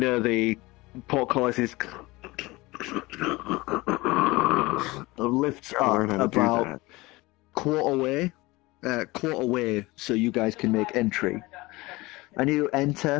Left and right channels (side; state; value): right; quieter; 21.5 dB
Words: the portcullis is lifts up about quarter way, so you guys can make entry. And you